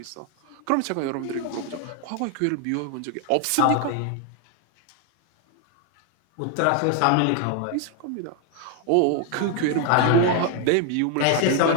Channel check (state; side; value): different; both; correlation 0.00